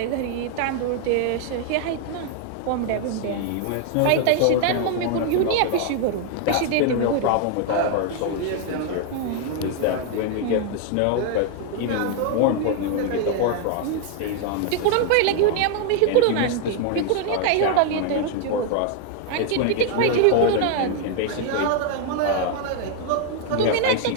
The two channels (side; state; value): both; different; correlation 0.00